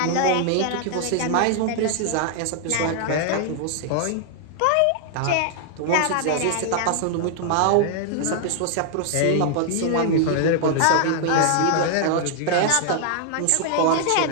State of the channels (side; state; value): both; different; correlation 0.00